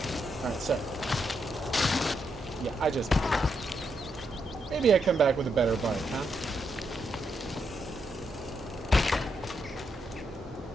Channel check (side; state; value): both; normal; correlation 0.80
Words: Alright, so. Yeah, I just... Maybe I come back with a better bite, huh?